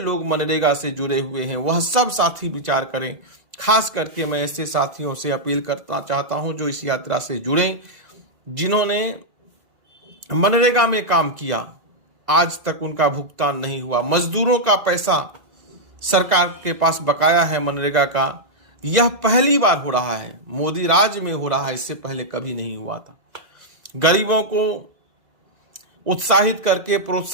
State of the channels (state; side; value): late; left; 2.0 ms